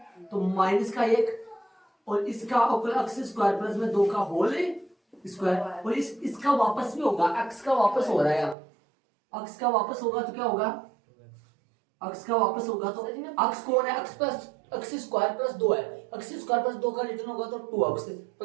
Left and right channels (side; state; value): left; drops out; at 8.6 s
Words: तो माइनस का 1 और इसका अक्स स्क्वायर प्लस में 2 का होल स्क्वायर, और इसका वापस भी होगा, एक्स का वापस हो रहा है, अक्स का वापस होगा तो क्या होगा, अक्स का वापस होगा तो अक्स कौन है, अक्स प्लस अक्स स्क्वायर प्लस 2 है, अक्स स्क्वायर प्लस 2 का रिटर्न होगा तो 2 अक्स